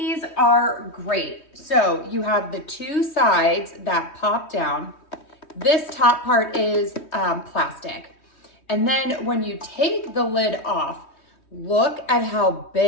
are great. So you have the two sides that pop down. This top part is plastic. And then when you take the lid off, look at how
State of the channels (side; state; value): right; late; 3.2 ms